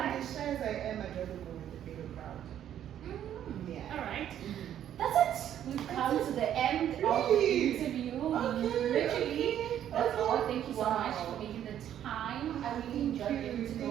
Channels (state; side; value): quieter; left; 10.6 dB